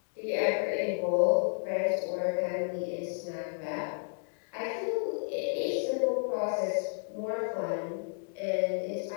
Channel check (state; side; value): silent; right; digital silence